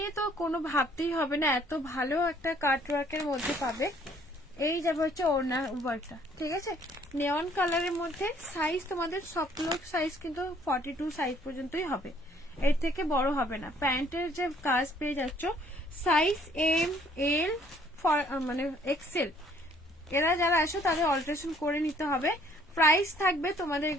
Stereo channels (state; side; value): normal; both; correlation 0.61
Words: তো কোনো ভাবতেই হবে না, এত ভালো একটা কাট ওয়ার্কের মধ্যে পাবে। এই যাবে হচ্ছে ওড়না ওয়ার্কটা, ঠিক আছে। নেওয়ান কালারের মধ্যে সাইজ তোমাদের সবগুলো সাইজ কিন্তু 42 সাইজ পর্যন্তই হবে, এর থেকে বড় হবে না। প্যান্টের যে কাজ পেয়ে যাচ্ছ সাইজ এম এল মানে এক্সেল, এরা যারা আসো তাদের অল্টারেশন করে নিতে হবে। প্রাইস থাকবে তোমাদের